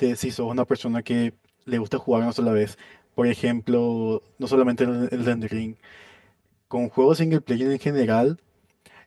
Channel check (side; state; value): both; identical; correlation 1.00